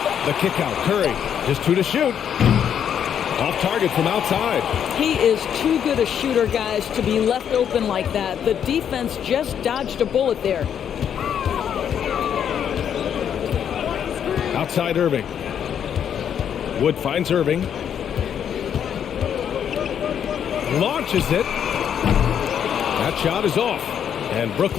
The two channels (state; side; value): quieter; right; 8.7 dB